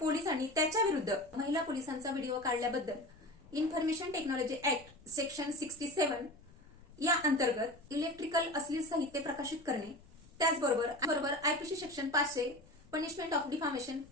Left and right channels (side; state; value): left; noise; rumble, 25 dB below the sound